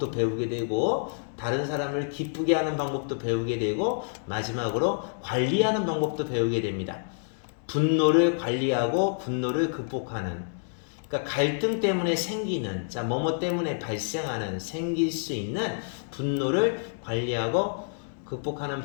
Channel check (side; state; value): right; silent; digital silence